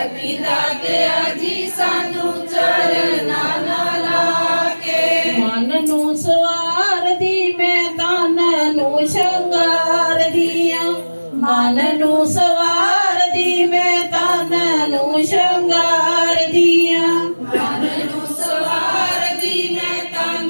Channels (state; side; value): inverted; both; correlation -1.00